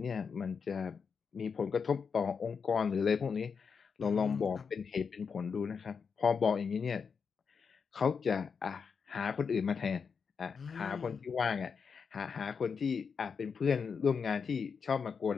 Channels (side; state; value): right; quieter; 5.9 dB